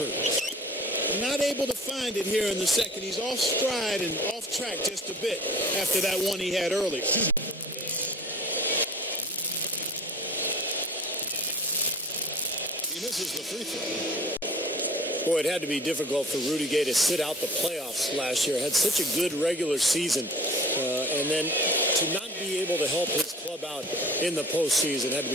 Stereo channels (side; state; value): both; normal; correlation 0.44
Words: Not able to find it here in the second. He's off stride and off track just a bit after that one he had earlier. He misses the free throw. Boy, it had to be difficult for Rudy Gay to sit out the playoffs last year. Had such a good regular season. And then to not be able to help his club out in the postseason had to